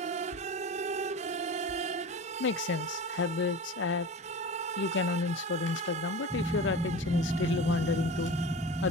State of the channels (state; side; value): normal; both; correlation 0.32